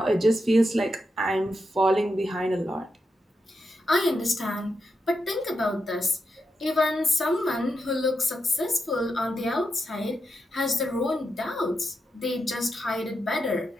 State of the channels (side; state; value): both; normal; correlation 0.85